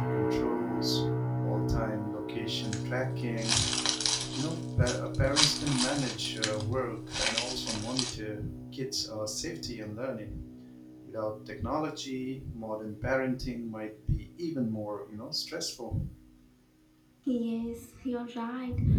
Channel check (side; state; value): both; identical; correlation 1.00